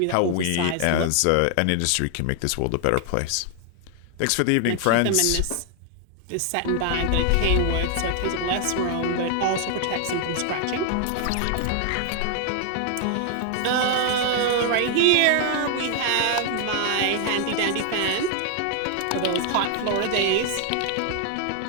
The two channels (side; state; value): both; different; correlation 0.00